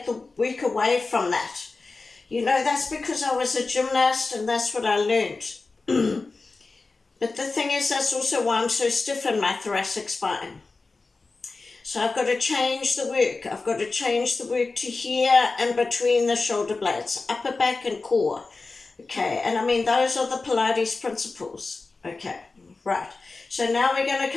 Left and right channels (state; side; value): quieter; right; 3.8 dB